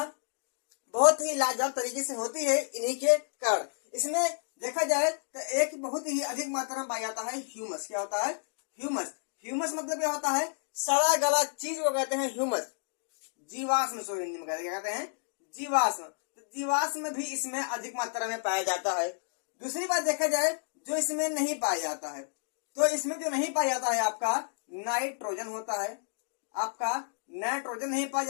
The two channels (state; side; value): silent; right; digital silence